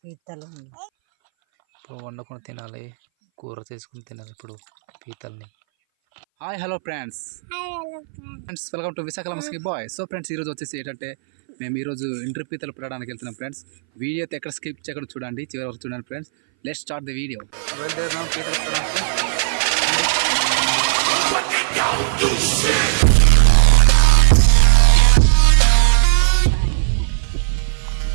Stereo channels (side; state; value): left; silent; 62 dB below the other